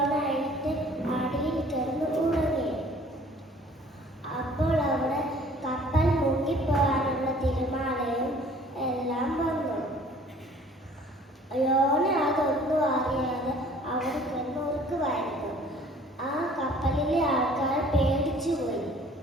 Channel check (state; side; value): normal; both; correlation 0.53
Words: എഴുന്നേറ്റ് അടിയിൽ കിടന്ന് ഉറങ്ങി. അപ്പോൾ അവിടെ കപ്പൽ മുങ്ങിപ്പോകാനുള്ള തിരമാലയും എല്ലാം വന്നു. യോന അതൊന്നും അറിയാതെ അവിടെ കിടന്ന് ഉറക്കുമായിരുന്നു. ആ കപ്പലിലെ ആൾക്കാർ പേടിച്ചുപോയി.